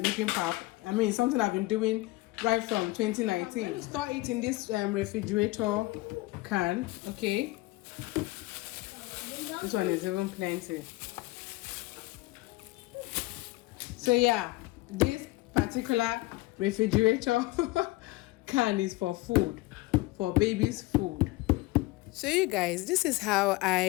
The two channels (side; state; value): right; quieter; 20.8 dB